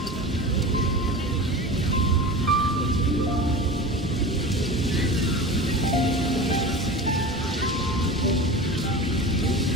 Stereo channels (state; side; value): normal; both; correlation 0.31